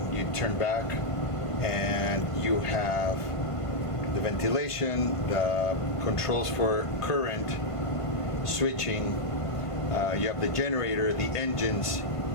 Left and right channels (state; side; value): late; right; 1.5 ms